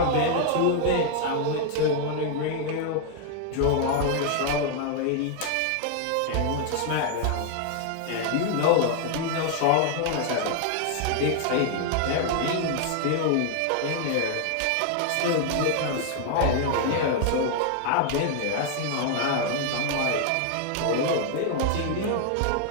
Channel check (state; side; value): different; both; correlation 0.00